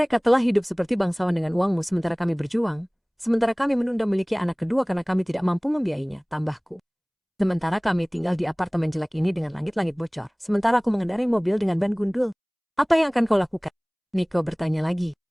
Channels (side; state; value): both; identical; correlation 1.00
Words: telah hidup seperti bangsawan dengan uangmu sementara kami berjuang, sementara kami menunda memiliki anak kedua karena kami tidak mampu membiayainya, tambahku. Sementara kami tinggal di apartemen jelek ini dengan langit-langit bocor, sementara aku mengendarai mobil dengan ban gundul. Apa yang akan kau lakukan? Nico bertanya lagi.